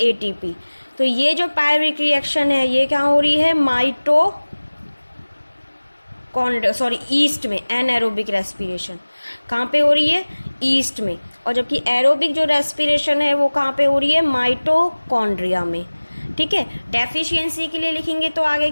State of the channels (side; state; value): both; inverted; correlation -1.00